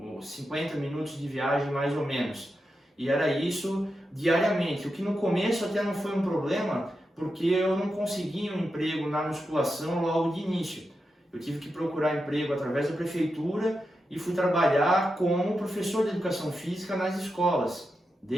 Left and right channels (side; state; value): both; normal; correlation 0.88